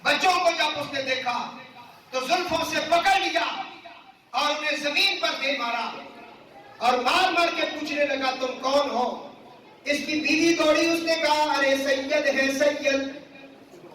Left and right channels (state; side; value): identical; both; correlation 1.00